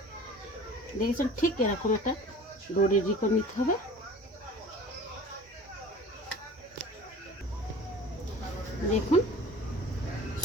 দেখেছেন, ঠিক এরকম একটা ডো রেডি করে নিতে হবে। দেখুন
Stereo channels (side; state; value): both; normal; correlation 0.42